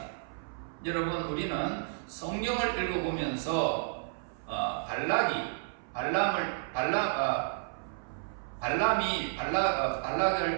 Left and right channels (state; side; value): silent; left; 57 dB below the other